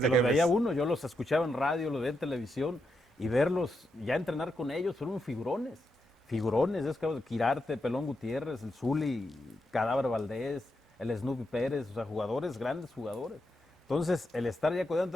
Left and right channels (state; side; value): normal; both; correlation 0.83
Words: que los jefes. veía uno, yo los escuchaba en radio, los veía en televisión y verlos ya entrenar con ellos fueron figurones. Figurones, es que Quirarte, Pelón Gutiérrez, el Zuli, Cadáver Valdés, el Snoopy Pérez, o sea, jugadores, grandes jugadores. Entonces, el estar ya